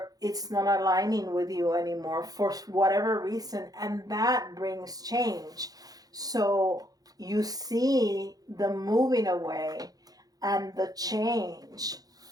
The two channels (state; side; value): late; left; 0.18 ms